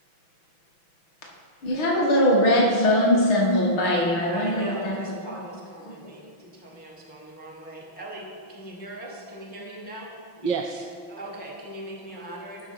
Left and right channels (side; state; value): right; late; 6.0 ms